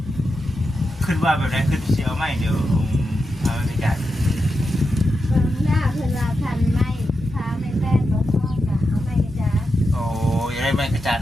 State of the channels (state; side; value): normal; both; correlation 0.88